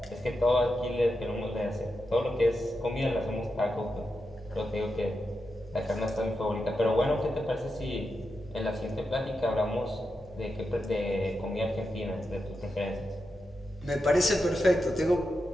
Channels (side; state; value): both; normal; correlation 0.87